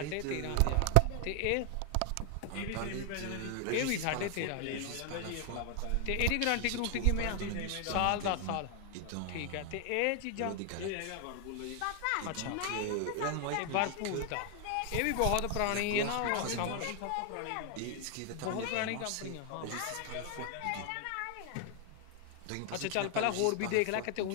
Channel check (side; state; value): both; different; correlation 0.00